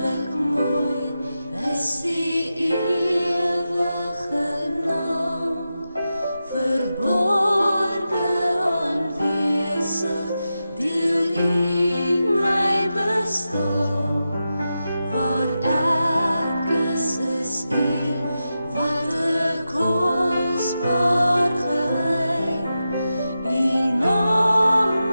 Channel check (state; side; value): inverted; both; correlation -0.91